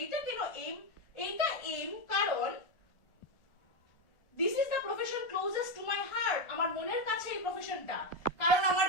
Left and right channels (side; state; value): right; late; 1.4 ms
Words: এইটা কেন এইম, এইটা এইম কারণ this is the closest to my heart, আমার মনের কাছে এই প্রফেশনটা, কারণ আমার